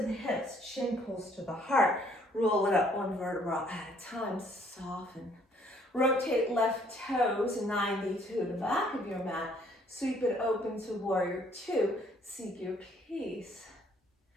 the hips, chin pulls to the heart. Roll it up one vertebra at a time. Soften. Rotate left toes 90 to the back of your mat. Sweep it open to warrior two. Seek your peace.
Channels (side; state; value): both; normal; correlation 0.63